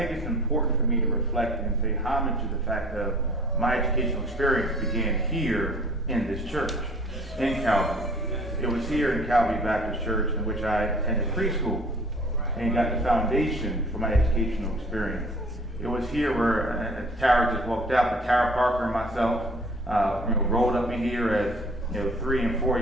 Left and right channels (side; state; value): both; normal; correlation 0.51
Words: it's important for me to reflect and pay homage to the fact that my educational experience began here in this church, in Calvary. It was here in Calvary Baptist Church in which I attended preschool and got the foundation for my educational experience. It was here where Tara just walked out, but Tara Parker and myself rolled up in here as 3 and 4